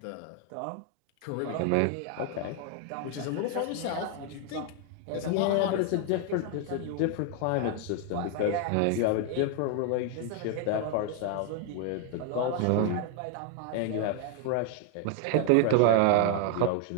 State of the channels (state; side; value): different; both; correlation 0.00